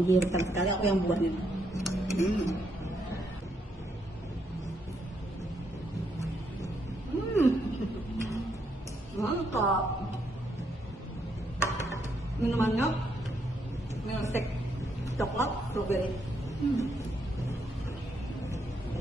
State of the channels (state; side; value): normal; both; correlation 0.76